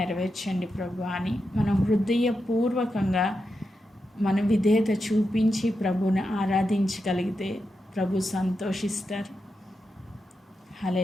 ప్రభు అని మనం హృదయపూర్వకంగా మన విధేయత చూపించి ప్రభుని ఆరాధించగలిగితే ప్రభు సంతోషిస్తారు.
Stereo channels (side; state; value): both; normal; correlation 0.87